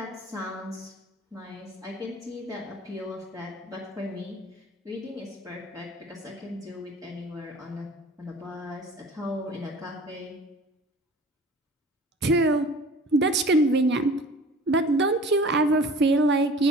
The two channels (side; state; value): both; normal; correlation 0.45